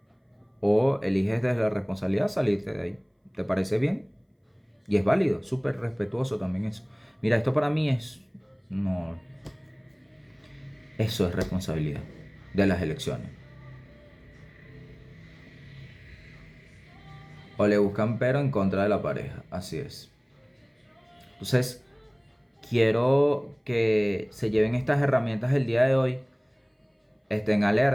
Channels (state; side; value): identical; both; correlation 1.00